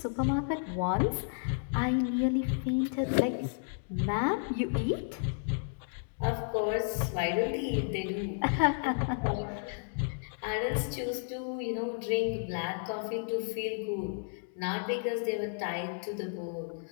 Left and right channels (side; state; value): right; silent; digital silence